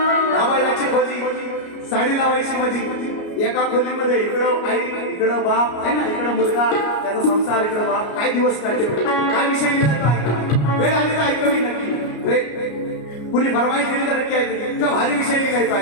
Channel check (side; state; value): right; late; 33 ms